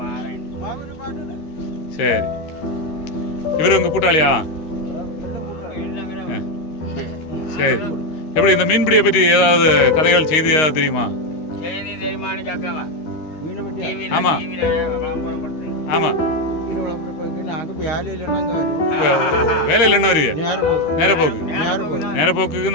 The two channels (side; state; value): right; late; 13 ms